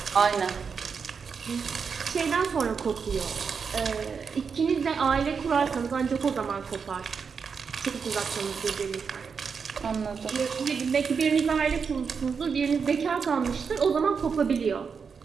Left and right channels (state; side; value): quieter; left; 5.9 dB